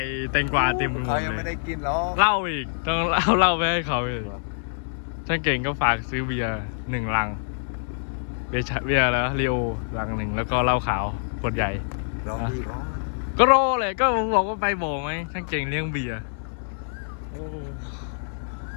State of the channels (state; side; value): silent; right; 61 dB below the other